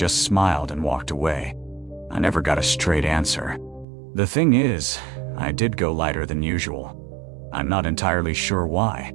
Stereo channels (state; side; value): drops out; left; at 3.9 s